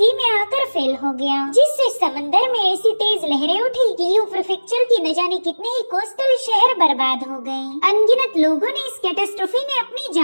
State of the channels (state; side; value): inverted; both; correlation -1.00